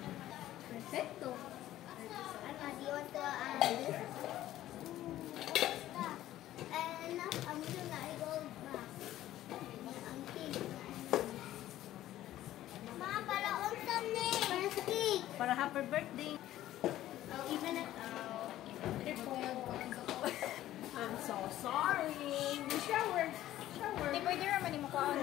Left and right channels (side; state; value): right; quieter; 13.8 dB